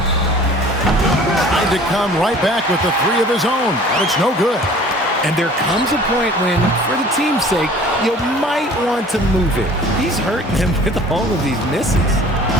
Tried to come right back with the 3 of his own, but it's no good. And there comes a point when, for the team's sake, you might want to move it. He's hurting them with all of these misses.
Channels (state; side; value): normal; both; correlation 0.48